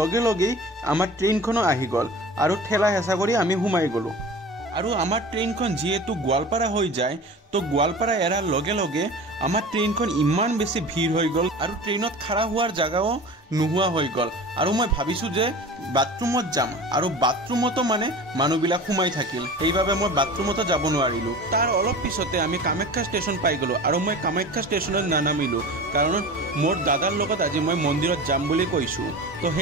লগে আমাৰ ট্ৰেইনখনো আহি গল আৰু ঠেলা হেঁচা কৰি আমি সোমাই গলো আৰু আমাৰ ট্ৰেইনখন যেহেতু গোৱালপাৰা হৈ যায় তো গোৱালপাৰা এৰাৰ লগে লগে আমাৰ ট্ৰেইনখন ইমান বেছি ভিৰ হৈ গল আৰু ট্ৰেইনত খাৰা হোৱাৰ জাগাও নোহোৱা হৈ গল আৰু মই ভাবিছো যে বাথৰুমত যাম আৰু বাথৰুমতো মানে মানুহবিলাক সোমাই থাকিল সেইভাবে মই বাথৰুমতো যাব নোৱাৰিলো তাৰ অলপ পিছতে আমি কামাখ্যা ষ্টেচন পাই গলো আৰু মই কামাখ্যা ষ্টেচনত নানামিলো কাৰণ মোৰ দাদাৰ লগত আজি মই মন্দিৰত যাম বুলি কৈছো তো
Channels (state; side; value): normal; both; correlation 0.36